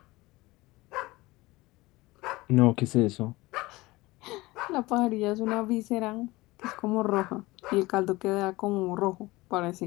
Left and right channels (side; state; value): right; quieter; 20.7 dB